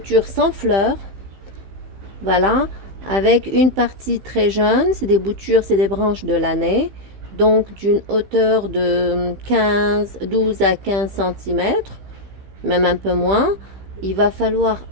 sans fleurs, voilà, avec une partie très jeune, c'est des boutures, c'est des branches de l'année, donc d'une hauteur de 12 à 15 cm, même un peu moins. Il va falloir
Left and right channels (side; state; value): left; late; 15 ms